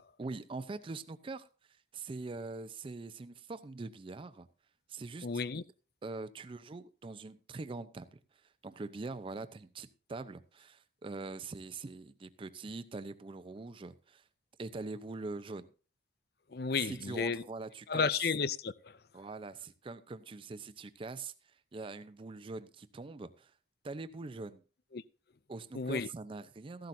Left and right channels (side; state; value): both; normal; correlation 0.32